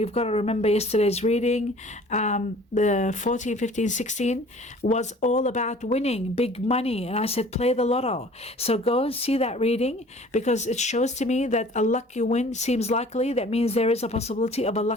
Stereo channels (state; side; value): normal; both; correlation 0.49